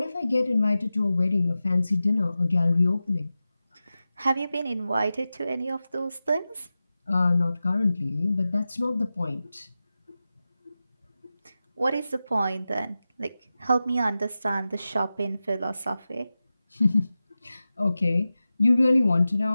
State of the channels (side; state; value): both; inverted; correlation -0.94